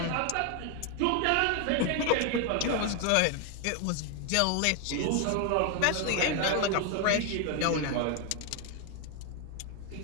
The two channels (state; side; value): different; both; correlation 0.01